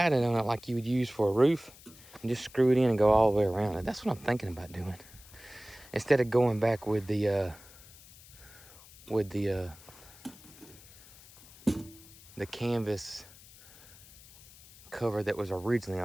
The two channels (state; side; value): noise; left; hiss, 21 dB below the sound